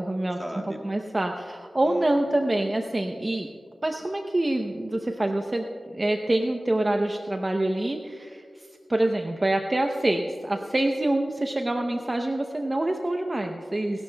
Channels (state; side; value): normal; both; correlation 0.98